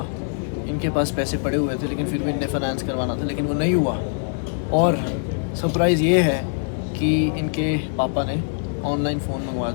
इनके पास पैसे पड़े हुए थे लेकिन फिर भी इन्हें फाइनेंस करवाना था, लेकिन वो नहीं हुआ। और सरप्राइज़ ये है कि इनके पापा ने ऑनलाइन फ़ोन मंगवा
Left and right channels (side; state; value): right; silent; digital silence